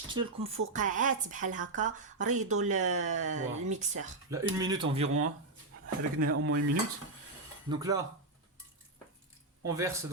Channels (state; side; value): quieter; left; 3.0 dB